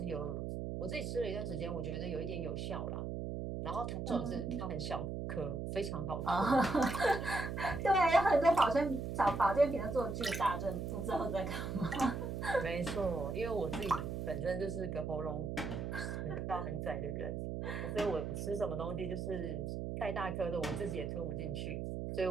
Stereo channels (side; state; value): right; noise; hum, 3 dB below the sound